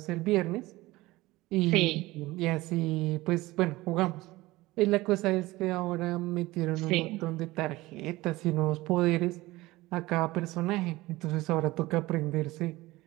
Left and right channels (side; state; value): left; quieter; 19.4 dB